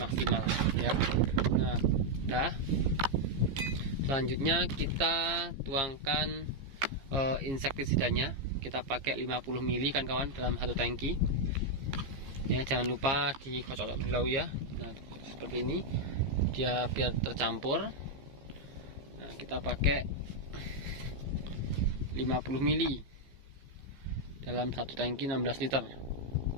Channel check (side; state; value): left; late; 15 ms